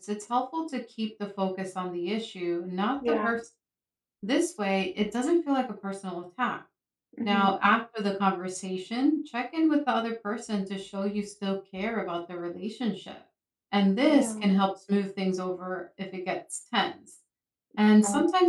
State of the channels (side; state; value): both; identical; correlation 1.00